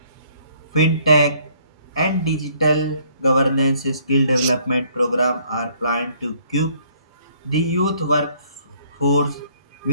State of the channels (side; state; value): both; inverted; correlation -0.63